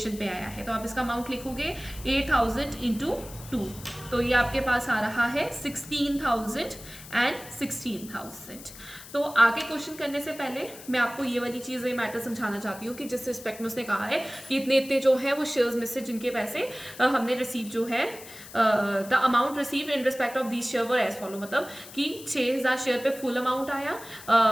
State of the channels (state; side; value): noise; left; hiss, 16 dB below the sound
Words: पे आया है, तो आप इसका अमाउंट लिखोगे 8,000 इंटू 2, तो ये आपके पास आ रहा है 16,000 एंड 16,000। तो आगे क्वेश्चन करने से पहले मैं आपको ये वाली चीज़, ये मैटर समझाना चाहती हूँ कि जिस रिस्पेक्ट में उसने कहा है कि इतने इतने जो है वो शेयर्स में से जिनके पैसे हमने रिसीव जो है, the amount receive in respect of these share were as follow, मतलब कि 6,000 शेयर पे फुल अमाउंट आया,